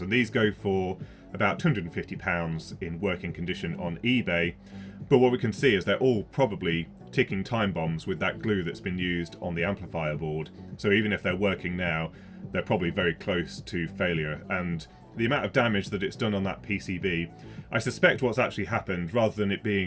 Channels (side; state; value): both; identical; correlation 1.00